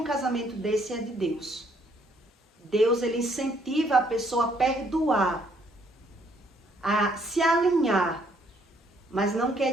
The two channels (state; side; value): normal; both; correlation 0.67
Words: casamento desse é de Deus. Deus, ele incentiva a pessoa a perdoar, a se alinhar, mas não